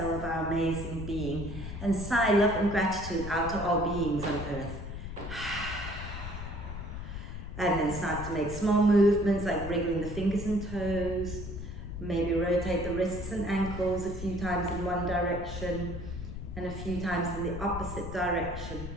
of our amazing being. And sigh love and gratitude out to all beings on earth. And then start to make small movements like wriggling the fingers and toes. Maybe rotate the wrists and ankles a few times in one direction and a few times in the opposite direction.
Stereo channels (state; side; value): noise; left; rumble, 8 dB below the sound